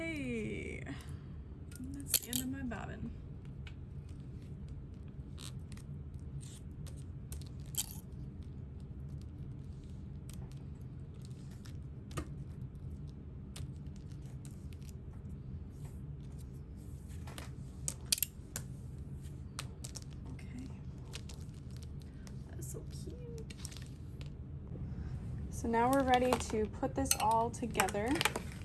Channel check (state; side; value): identical; both; correlation 1.00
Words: that's the end of my bobbin. So cute. So now we're ready to put this all together.